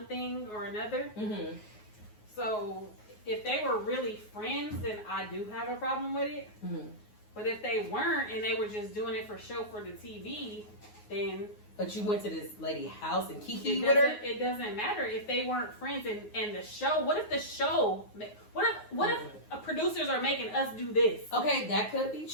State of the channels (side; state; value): right; late; 9.5 ms